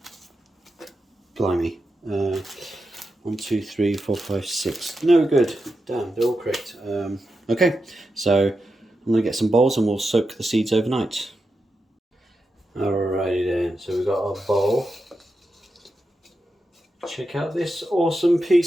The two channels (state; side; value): normal; both; correlation 0.88